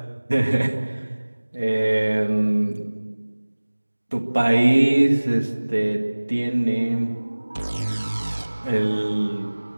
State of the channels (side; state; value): both; inverted; correlation -1.00